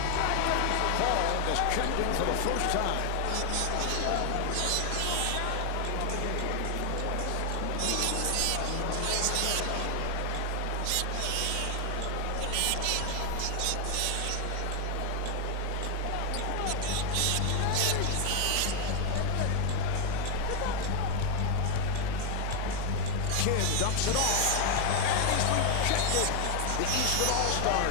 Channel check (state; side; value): different; both; correlation 0.01